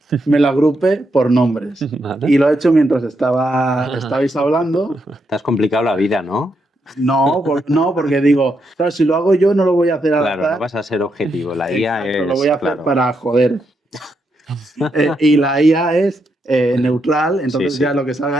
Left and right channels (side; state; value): both; normal; correlation 0.81